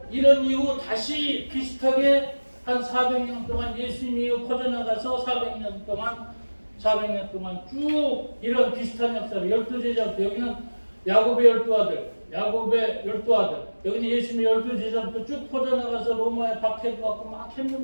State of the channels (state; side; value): inverted; both; correlation -1.00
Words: 이런 이후 다시 비슷하게 한 400년 동안 예수님이 퍼져나가서 400년 동안 쭉 이런 비슷한 역사를 12제자부터 여기는 야곱의 12아들, 여기는 예수님의 12제자부터 쭉 퍼져나가서 로마에 박해를 받고 막